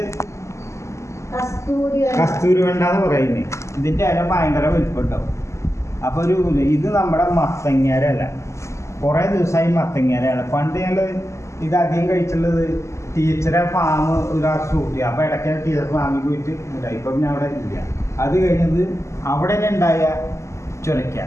കസ്തൂരി വെണ്ട എന്ന് പറയുന്നത്. ഇതിൻ്റെ ഇല ഭയങ്കര വലിപ്പമുണ്ടാവും. അപ്പോൾ ഇത് നമ്മുടെ മത്തങ്ങേരല്ല, കുറേ ദിവസമായി മത്തങ്ങേരയാണ്. പണ്ട് ഞങ്ങൾ ഇത് അധികം കഴിച്ചുള്ളത് ടീച്ചറെ ഫാം ഒരു ഷൂട്ട് ചെയ്യുക. അപ്പോൾ ഇടയ്ക്ക് ടീച്ചർ ഫാമിൽ പോയിട്ട് ഉണ്ടായി. ഇപ്പം പിന്നെ അവിടെ ഇല്ല. അത് കഴിഞ്ഞത് അവിടെ തന്നെ ഉണ്ടായ ചുരയ്ക്ക.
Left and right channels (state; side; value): late; right; 0.14 ms